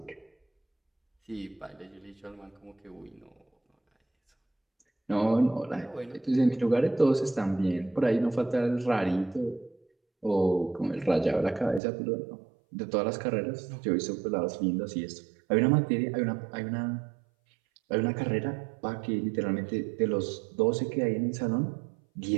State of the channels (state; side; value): drops out; left; at 11.8 s